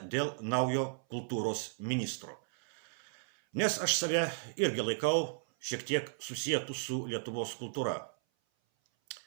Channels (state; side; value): silent; left; 55 dB below the other